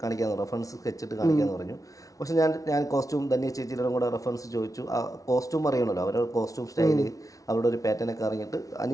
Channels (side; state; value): right; late; 0.17 ms